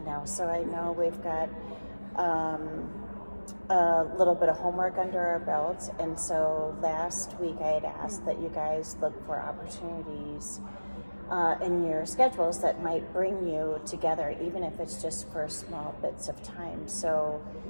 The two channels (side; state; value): both; inverted; correlation -1.00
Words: now, so I know we've got a little bit of homework under our belts. And so last week I had asked that you guys look for opportunities in your schedules that might bring you together, even if it's just for small bits of time. So